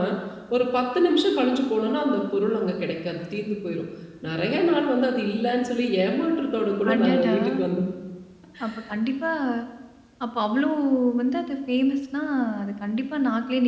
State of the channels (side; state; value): both; identical; correlation 1.00